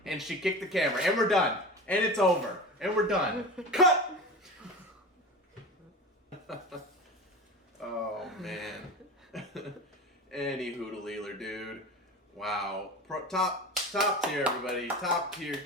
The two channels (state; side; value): normal; both; correlation 0.31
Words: And we're done. And it's over. And we're done. Cut! Oh, man. Any hoodleeler, dude. Wow. Top tier, everybody. Top tier